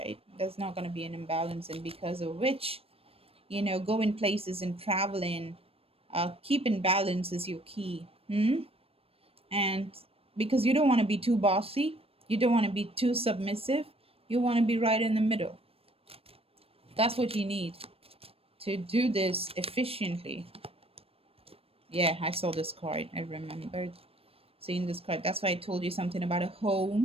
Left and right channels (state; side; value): late; left; 0.28 ms